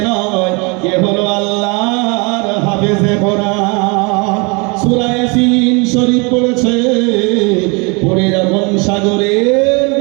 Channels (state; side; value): quieter; left; 30.3 dB